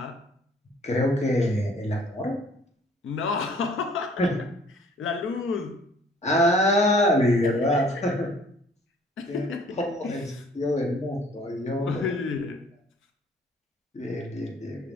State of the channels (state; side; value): normal; both; correlation 0.56